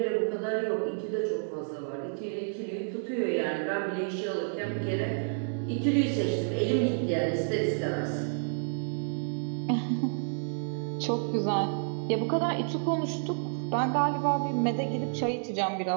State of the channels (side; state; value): left; silent; digital silence